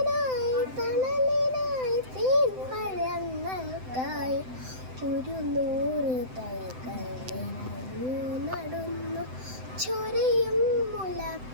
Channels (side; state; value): left; late; 7.8 ms